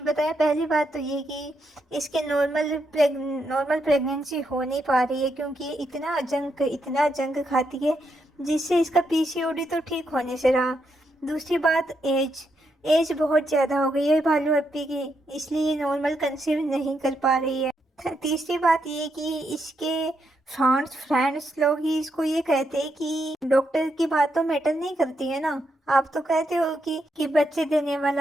बताया। पहली बात तो ये कि इसके नॉर्मल प्रेगनेंसी हो नहीं पा रही है, क्योंकि ये इतना जंक खाती है जिससे इसका पीसीओडी तो ठीक होने से रहा। दूसरी बात, एज बहुत ज़्यादा हो गई है भालू अप्पी की, इसलिए ये नॉर्मल कंसीव नहीं कर पा रही है। तीसरी बात ये कि इसके फ्रेंड्स लोग ही इसको ये कहते हैं कि डॉक्टर की बात तो मैटर नहीं करती है ना। आप तो कहते हो कि बच्चे देने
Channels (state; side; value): normal; both; correlation 0.80